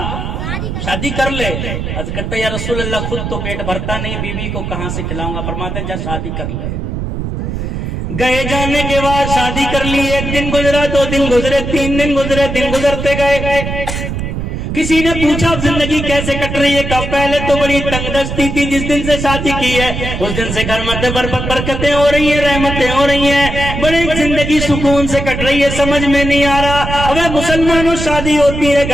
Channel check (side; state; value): right; noise; rumble, 4 dB below the sound